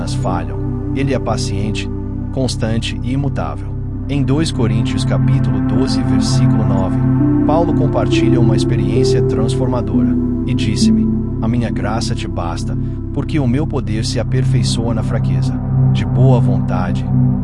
falham, Ele é paciente, constante e imutável. Em 2 Coríntios capítulo 12, versículo 9, Paulo compartilha uma experiência transformadora, e disse-me: a minha graça te basta, porque o meu poder se aperfeiçoa na fraqueza. De boa vontade,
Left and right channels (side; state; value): both; identical; correlation 1.00